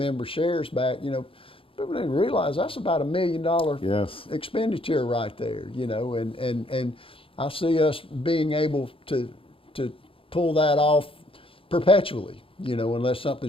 shares back, people didn't realize that's about $1 million expenditure right there, and I see us being able to pull that off perpetually, unless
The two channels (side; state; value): right; late; 0.26 ms